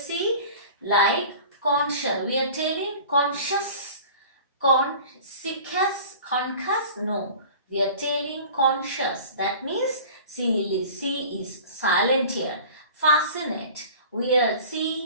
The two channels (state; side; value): inverted; both; correlation -0.42